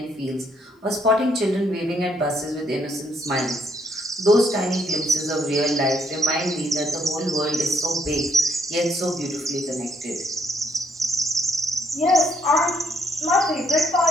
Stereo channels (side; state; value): both; normal; correlation 0.71